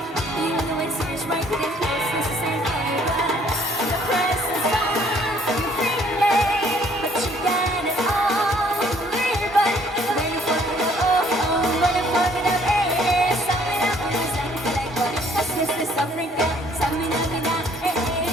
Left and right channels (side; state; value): both; normal; correlation 0.61